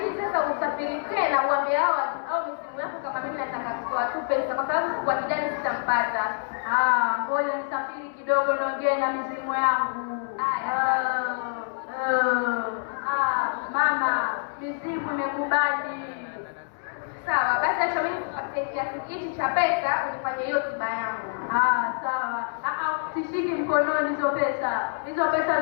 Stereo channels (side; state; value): right; silent; 61 dB below the other